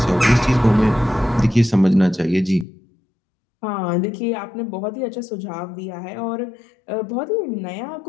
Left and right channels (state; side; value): drops out; right; at 2.7 s